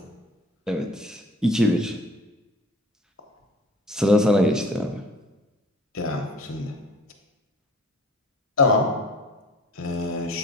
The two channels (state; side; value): normal; both; correlation 0.47